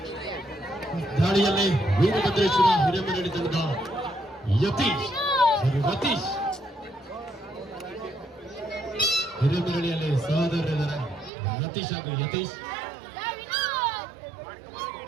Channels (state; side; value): drops out; left; at 11.3 s